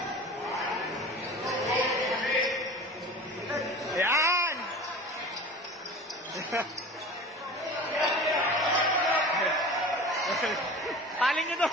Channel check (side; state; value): both; normal; correlation 0.37